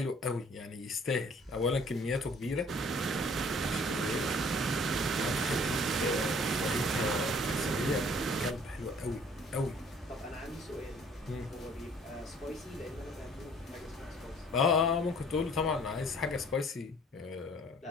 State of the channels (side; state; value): both; normal; correlation 0.55